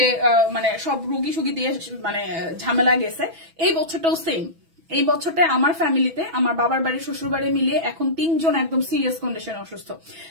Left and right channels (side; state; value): left; late; 6.1 ms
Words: মানে সব রুগী সুগী দিয়ে মানে ঝামেলা গেছে, এই বছরটাও সেম। এই বছরটা আমার ফ্যামিলিতে, আমার বাবার বাড়ি শ্বশুর বাড়ি মিলিয়ে এখন 3 জন একদম সিরিয়াস কন্ডিশনে অসুস্থ।